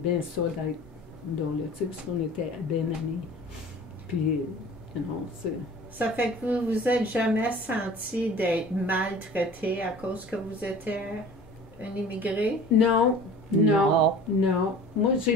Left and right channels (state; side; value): noise; left; hum, 28 dB below the sound